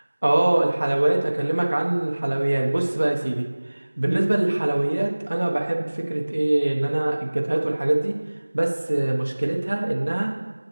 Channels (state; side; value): inverted; both; correlation -1.00